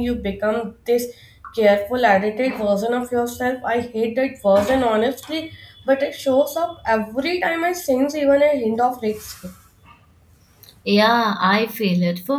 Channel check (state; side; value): identical; both; correlation 1.00